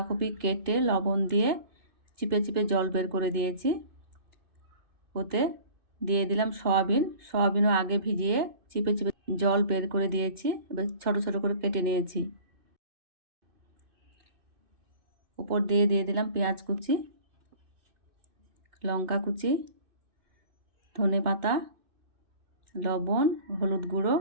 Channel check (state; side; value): late; left; 2.6 ms